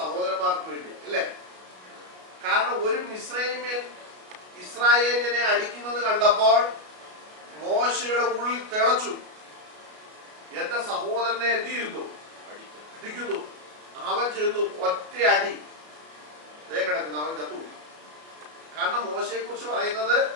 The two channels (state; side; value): late; left; 33 ms